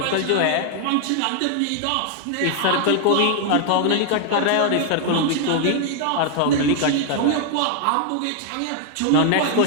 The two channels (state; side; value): different; both; correlation 0.00